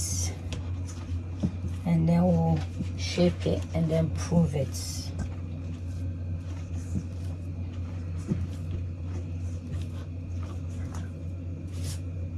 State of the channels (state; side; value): identical; both; correlation 1.00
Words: and then we'll shape it and then prove it.